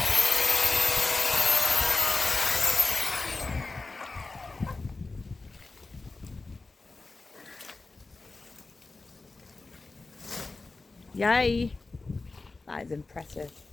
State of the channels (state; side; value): quieter; right; 3.6 dB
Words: Yay. That is impressive.